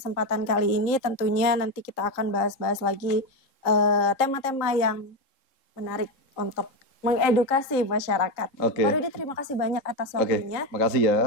kali ini. Tentunya nanti kita akan bahas-bahas lagi tema-tema yang menarik untuk mengedukasi masyarakat. Oke. Pak Rudi, terima kasih banyak atas Oke, waktunya. makasih ya.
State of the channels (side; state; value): right; late; 3.7 ms